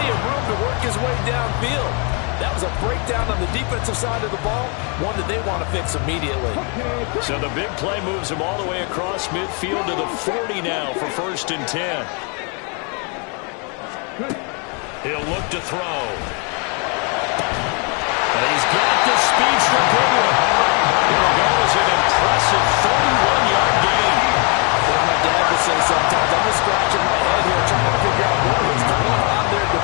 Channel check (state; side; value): quieter; right; 35.5 dB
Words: of room to work his way downfield. That was was a breakdown on the defensive side of the ball, one that they want to fix immediately. So the big play moves him all the way across midfield to the 40 now for 1st and 10. He'll look to throw. And he's got the speedster going. Here goes an impressive 31-yard gain. Well, my dad would say sometimes, I'm just scratching my head here trying to figure out what was going on there